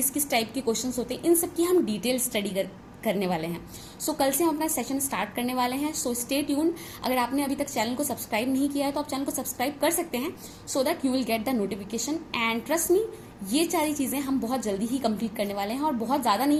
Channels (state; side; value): identical; both; correlation 1.00